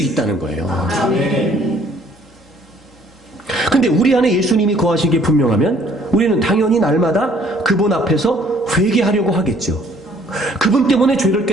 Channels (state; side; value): normal; both; correlation 0.60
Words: 거예요. 근데 우리 안에 예수님이 거하신 게 분명하면 우리는 당연히 날마다 그분 앞에서 회개하려고 하겠죠. 그분 때문에 죄를